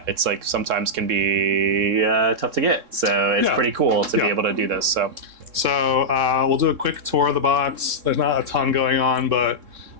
it's sometimes can be tough to get, so it's pretty cool to be able to do this. So we'll do a quick tour of the box. There's not a ton going on, but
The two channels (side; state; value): left; late; 3.7 ms